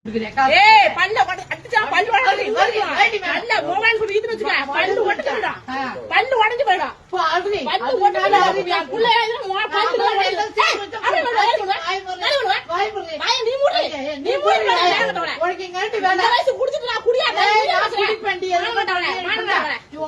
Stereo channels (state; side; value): identical; both; correlation 1.00